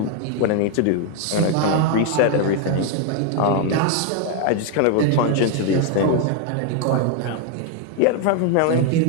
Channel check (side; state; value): both; different; correlation 0.00